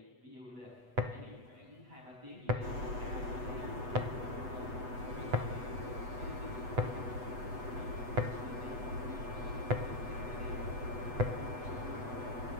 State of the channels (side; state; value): left; late; 8.1 ms